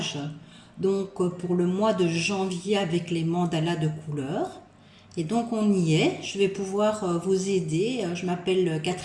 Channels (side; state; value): both; identical; correlation 1.00